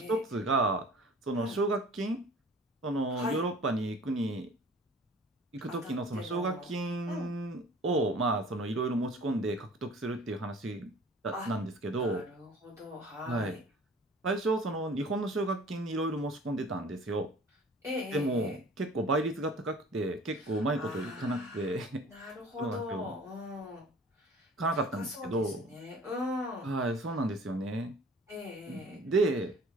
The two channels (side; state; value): both; normal; correlation 0.47